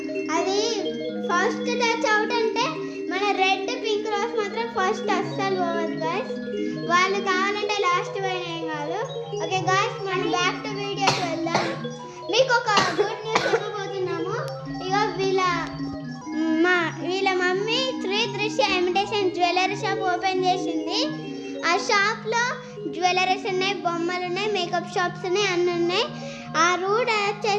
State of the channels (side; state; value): both; identical; correlation 1.00